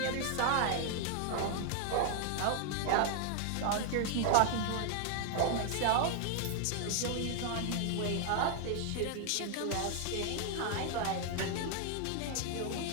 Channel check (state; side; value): different; both; correlation 0.00